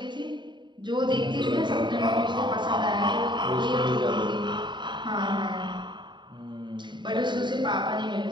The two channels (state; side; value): late; left; 0.22 ms